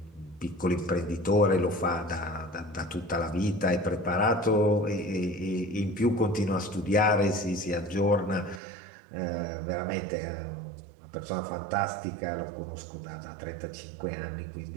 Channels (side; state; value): left; drops out; at 8.6 s